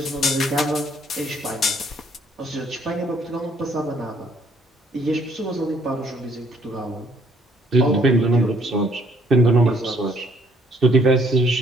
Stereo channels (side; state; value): both; normal; correlation 0.64